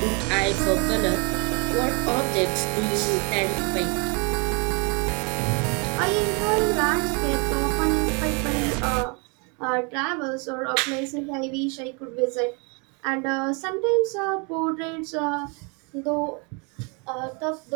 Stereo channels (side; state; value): left; quieter; 32.9 dB